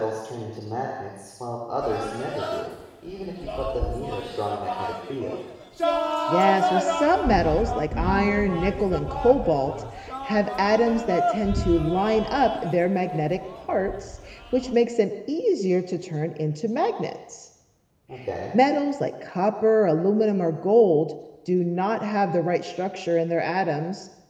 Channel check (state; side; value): identical; both; correlation 1.00